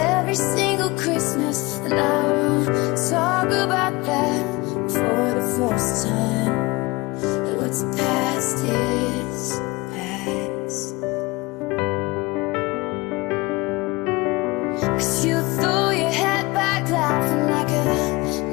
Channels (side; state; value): right; quieter; 23.0 dB